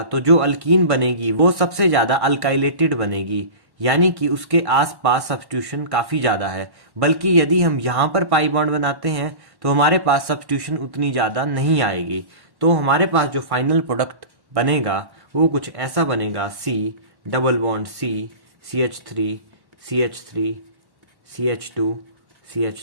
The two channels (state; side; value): late; left; 1.1 ms